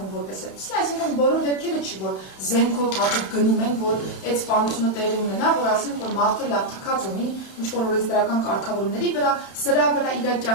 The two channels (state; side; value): late; right; 31 ms